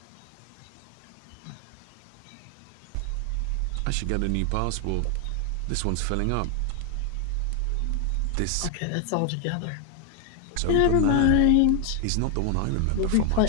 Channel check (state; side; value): different; both; correlation 0.01